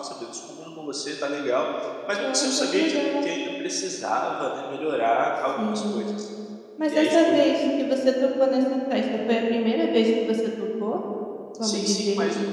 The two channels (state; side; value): identical; both; correlation 1.00